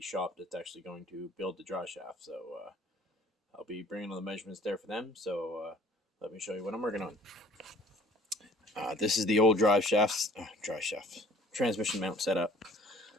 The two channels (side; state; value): both; normal; correlation 0.53